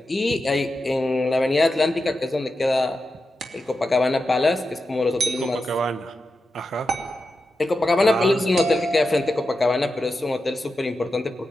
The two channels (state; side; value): normal; both; correlation 0.90